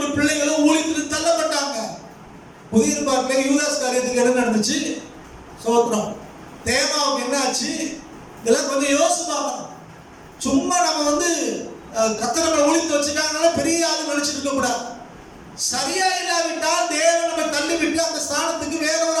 பிள்ளைகளும் ஊழியத்தில் தள்ளப்பட்டாங்க. புதிய ஏற்பாட்டிலே யூதாஸ் காரியத்துக்கு என்ன நடந்துச்சு? சோத்திரம். தேவாவுக்கு என்ன ஆச்சு? இதெல்லாம் கொஞ்சம் யோசிச்சு பார்க்கணும். சும்மா நம்ம கர்த்தர் நம்மளை ஒழித்து வச்சுட்டாங்கனால பெரிய ஆள் நினைச்சிட்டு இருக்க கூடாது. சரியா இல்லாவிட்டால் தேவன் நம்ம தள்ளி விட்டு அந்த ஸ்தானத்துக்கு வேற ஒரு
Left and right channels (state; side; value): identical; both; correlation 1.00